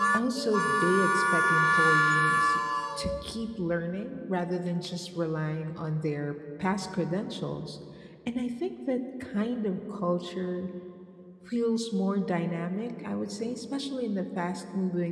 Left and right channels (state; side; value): identical; both; correlation 1.00